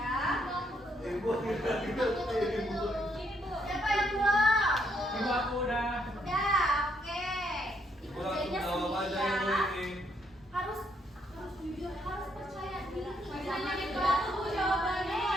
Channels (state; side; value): normal; both; correlation 0.73